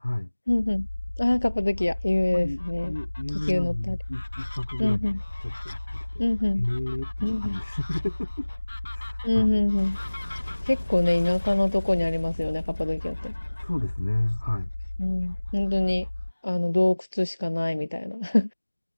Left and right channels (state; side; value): inverted; both; correlation -1.00